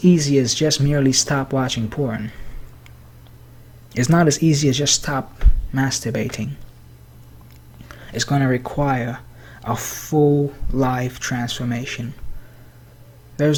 easy as just merely stop watching porn. It's not as easy as just stop masturbating. It's going to require a full life transformation.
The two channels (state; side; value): identical; both; correlation 1.00